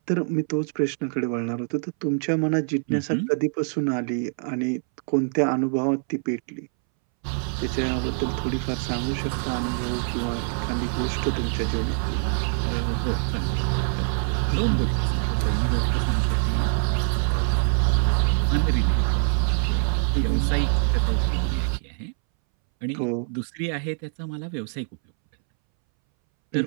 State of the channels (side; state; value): left; silent; 62 dB below the other